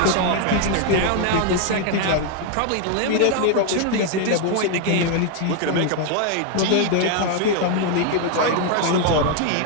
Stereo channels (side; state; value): both; different; correlation 0.01